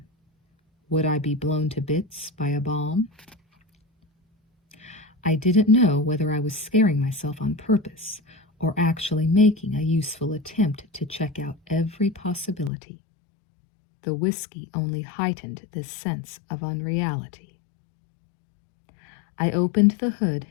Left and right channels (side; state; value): right; drops out; at 12.7 s